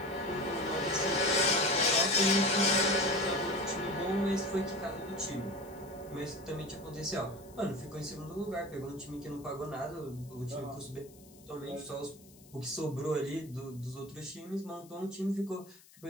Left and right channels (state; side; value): noise; left; hiss, 24 dB below the sound